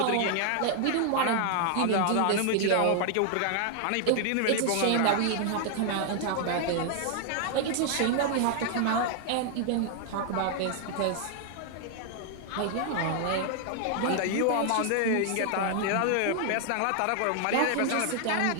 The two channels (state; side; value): different; both; correlation 0.00